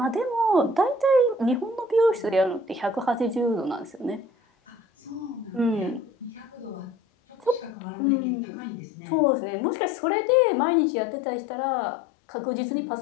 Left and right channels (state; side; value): drops out; right; at 7.7 s